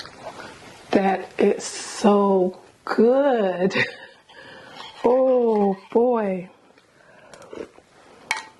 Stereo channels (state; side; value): identical; both; correlation 1.00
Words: That is so good. Oh boy.